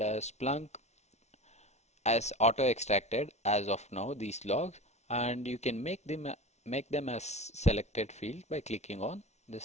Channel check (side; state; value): right; late; 0.32 ms